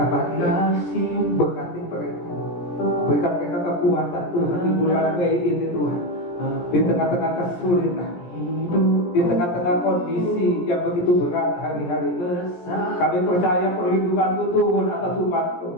pagi ini. Berkati mereka. Berikan mereka kekuatan Tuhan di bulan Mei ini Tuhan. Di tengah-tengah kesulitan, di tengah-tengah kondisi yang begitu berat hari-hari ini, kami percaya perlindungan-Mu turun atas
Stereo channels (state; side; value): late; right; 17 ms